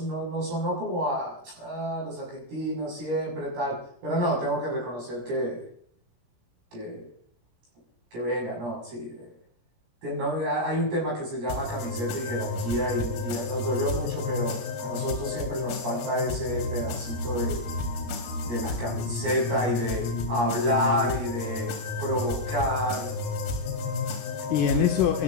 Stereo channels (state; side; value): late; left; 17 ms